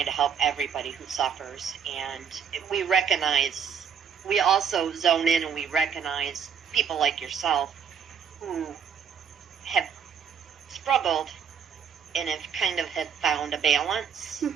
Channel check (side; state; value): left; quieter; 7.1 dB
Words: to help everybody who suffers. And we also zone in and we recognize people like yourself who have struggled and have found a balance.